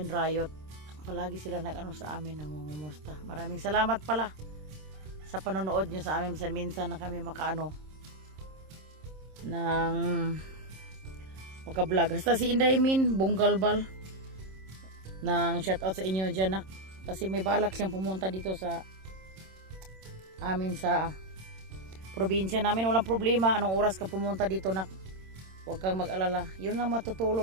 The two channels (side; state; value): left; late; 26 ms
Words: Rayot. Palagi sila sa amin nangungumusta. Maraming salamat pala sa panonood nyo sa amin. Minsan na kami ng maka-vlog. Hasta si Inday Min Bunggalbal ng shoutout sa inyo dyan kasi may balak siyang pumunta dito sa amin sa probinsya namin. Walang problema anong oras ka pumunta dito huwag kang mag-alala. Yun lang